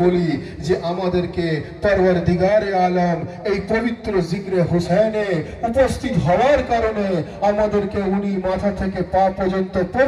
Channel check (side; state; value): both; identical; correlation 1.00